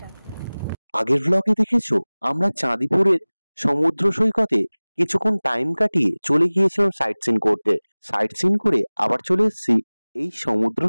আগের ব্লগে দেখেছো আমরা চাঁদিপুরের সমুদ্র সৈকতে কিছুক্ষণ টাইম কাটিয়ে চলে গিয়েছিলাম সাইট সিন করতে। সাইট সিন করে আবার চলে এসেছি এই সমুদ্র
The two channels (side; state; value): both; inverted; correlation -1.00